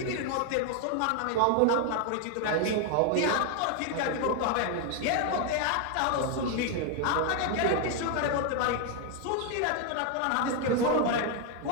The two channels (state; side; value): different; both; correlation 0.01